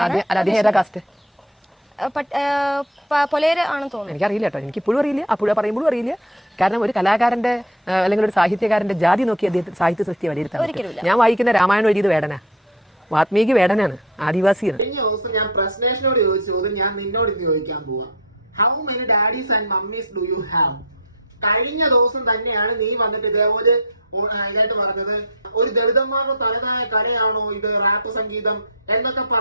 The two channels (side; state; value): both; normal; correlation 0.25